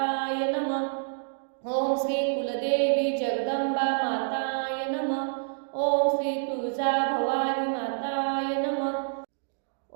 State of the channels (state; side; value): silent; left; digital silence